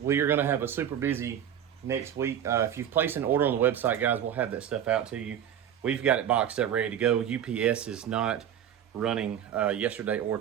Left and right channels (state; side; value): quieter; left; 9.7 dB